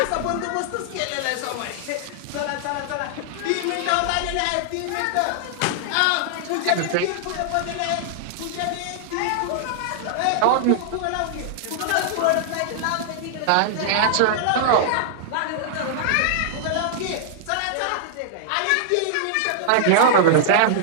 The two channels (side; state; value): both; different; correlation -0.01